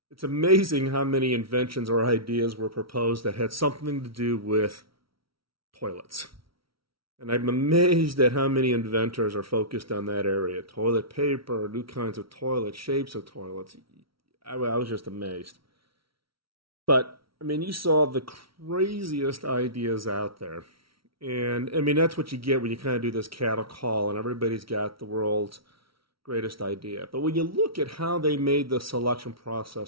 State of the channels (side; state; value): left; late; 0.75 ms